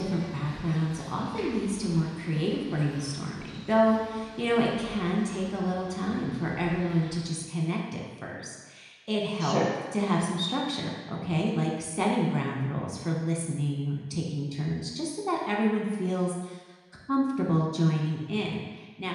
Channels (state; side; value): identical; both; correlation 1.00